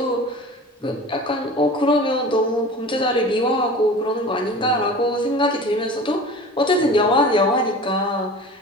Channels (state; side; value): normal; both; correlation 0.38